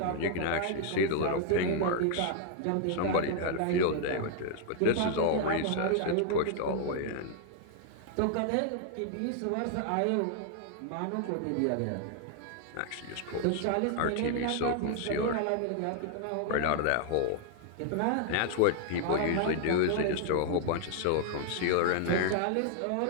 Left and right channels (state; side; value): different; both; correlation 0.00